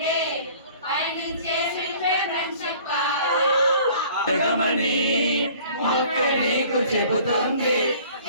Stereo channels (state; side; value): inverted; both; correlation -0.51